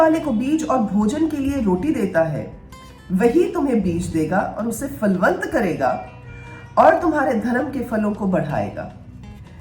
को बीज और भोजन के लिए रोटी देता है वही तुम्हें बीज देगा और उसे फलवंत करेगा और तुम्हारे धर्म के फलों को बढ़ाएगा।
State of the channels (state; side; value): identical; both; correlation 1.00